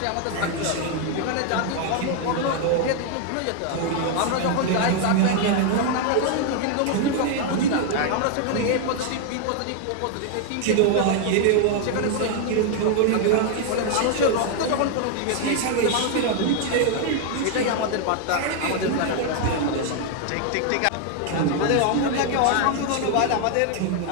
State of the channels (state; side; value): different; both; correlation 0.00